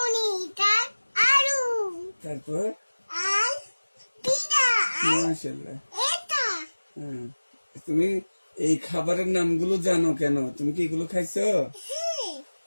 আর আলু, তারপর আর পিঠা, আর মাশাআল্লাহ। এটা হ্যাঁ, তুমি এই খাবারের নামগুলো জানো কেন? তুমি কি এগুলো খাইছো?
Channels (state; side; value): inverted; both; correlation -1.00